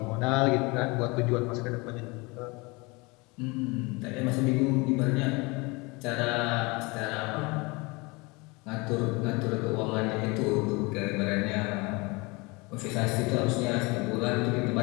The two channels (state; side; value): quieter; right; 26.2 dB